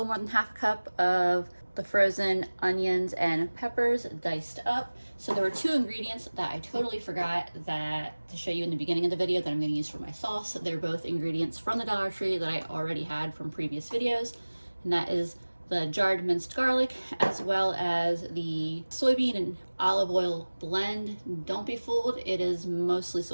more than half a cup of the frozen onions and peppers diced up. So there were two ingredients that I totally forgot to show you in the beginning of the video that I'm going to use for my sauce. They're both ingredients from the Dollar Tree that I already had from previous videos, and that is the jarred minced garlic as well as the soybean and olive oil blend. Don't be fooled, it is mostly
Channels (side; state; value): both; inverted; correlation -1.00